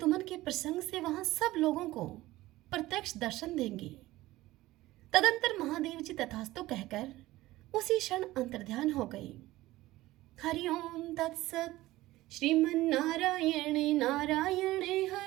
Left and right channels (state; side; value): quieter; left; 17.4 dB